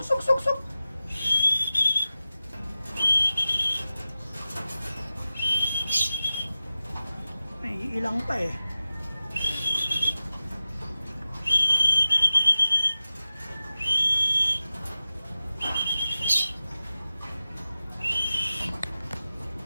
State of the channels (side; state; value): both; inverted; correlation -0.95